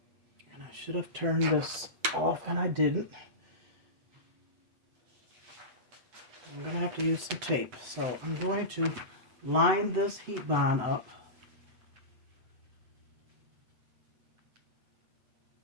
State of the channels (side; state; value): left; late; 7.9 ms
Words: and I should have turned this off and I didn't. I'm going to have to use some tape. So I'm going to line this heat bond up